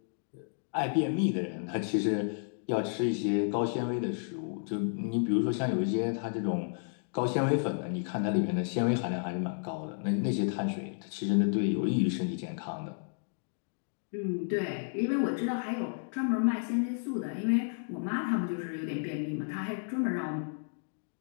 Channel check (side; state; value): right; silent; digital silence